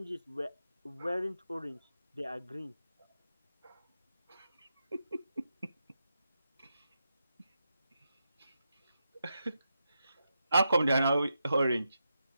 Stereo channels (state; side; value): inverted; both; correlation -0.86